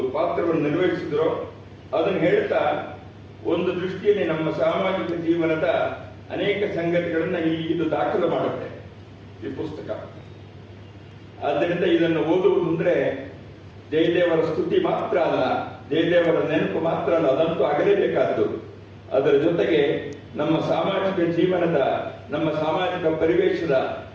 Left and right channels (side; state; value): both; identical; correlation 1.00